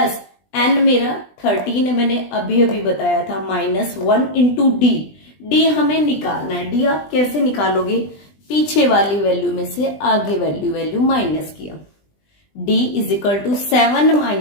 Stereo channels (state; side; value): late; right; 20 ms